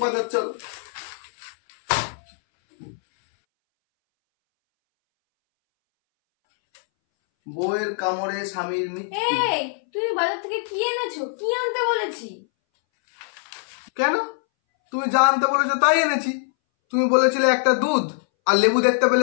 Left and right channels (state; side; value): silent; right; 62 dB below the other